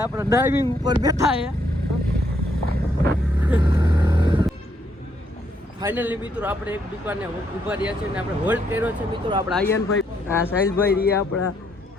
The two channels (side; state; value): both; normal; correlation 0.73